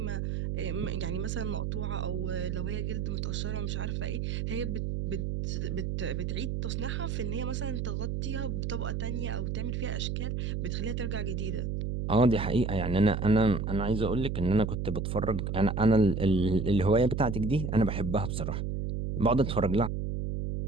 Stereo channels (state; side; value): noise; right; hum, 1 dB below the sound